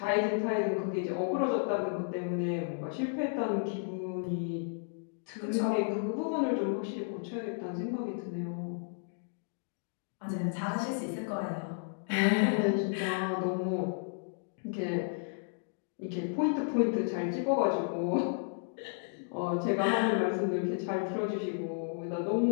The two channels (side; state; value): right; silent; digital silence